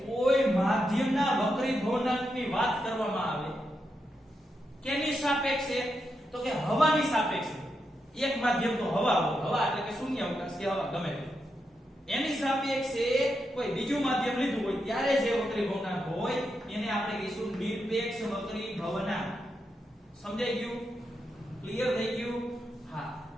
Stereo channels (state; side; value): normal; both; correlation 0.85